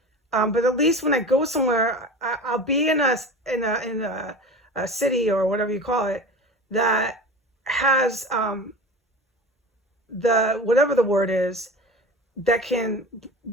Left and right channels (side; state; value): both; normal; correlation 0.33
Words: But at least when I go somewhere, I'll be in a city or whatever you call it that has the whatever the word is that can